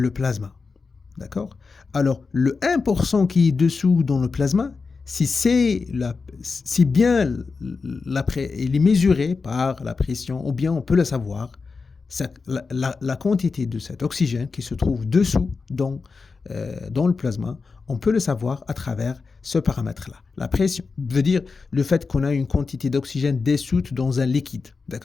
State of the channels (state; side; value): quieter; right; 4.6 dB